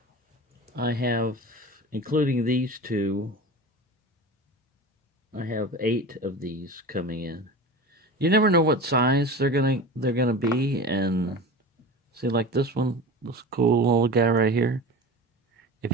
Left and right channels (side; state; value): both; normal; correlation 0.33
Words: I have, including these two, I have 8 of these coming in. You never know what size they're gonna be, and see, like this one, this cool little guy right here.